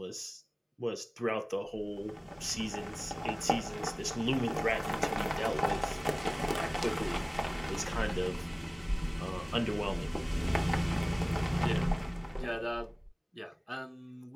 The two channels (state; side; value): identical; both; correlation 1.00